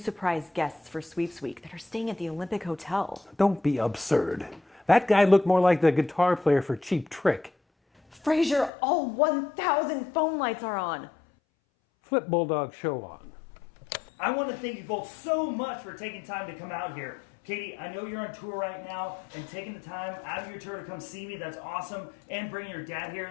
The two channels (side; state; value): right; drops out; at 8.7 s